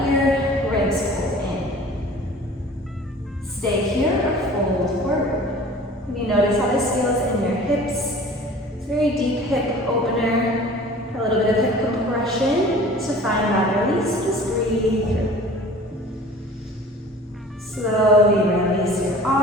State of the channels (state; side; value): normal; both; correlation 0.45